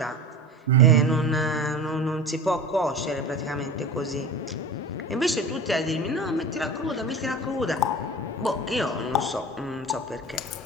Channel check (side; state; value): both; normal; correlation 0.33